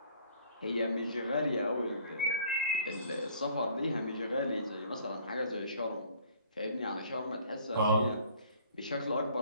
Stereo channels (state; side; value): inverted; both; correlation -0.56